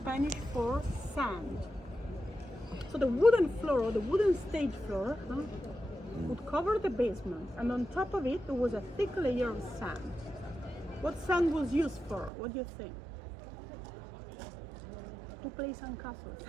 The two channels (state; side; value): drops out; left; at 12.3 s